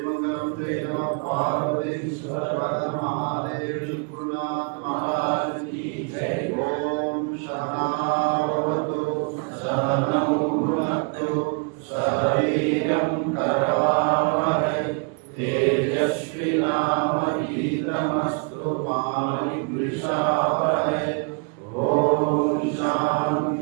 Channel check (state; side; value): quieter; left; 38.0 dB